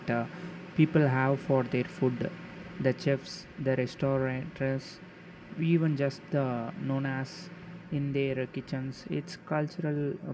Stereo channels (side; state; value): both; identical; correlation 1.00